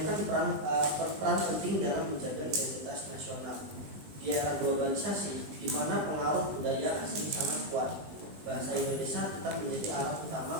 peran penting dalam menjaga identitas nasional. Di era globalisasi, di mana pengaruh budaya asing sangat kuat, bahasa Indonesia tetap menjadi alat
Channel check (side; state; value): left; late; 20 ms